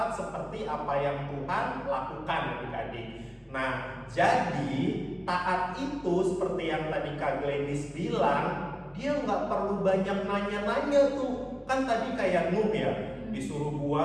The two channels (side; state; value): both; identical; correlation 1.00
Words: seperti apa yang Tuhan lakukan adik-adik. Nah, jadi taat itu seperti yang tadi Kak Gladys bilang, dia nggak perlu banyak nanya-nanya tuh. Kan tadi kayak Nuh ya, disuruh